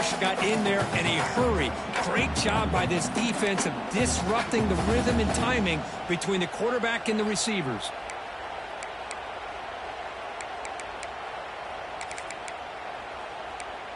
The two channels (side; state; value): both; identical; correlation 1.00